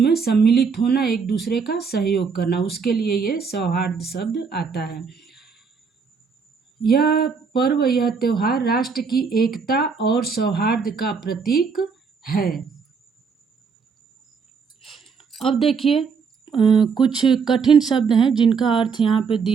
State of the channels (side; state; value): left; quieter; 5.5 dB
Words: सम्मिलित होना, एक दूसरे का सहयोग करना, उसके लिए ये सौहार्द शब्द आता है। यह पर्व, यह त्योहार राष्ट्र की एकता और सौहार्द का प्रतीक है। अब देखिए कुछ कठिन शब्द हैं जिनका अर्थ यहाँ पे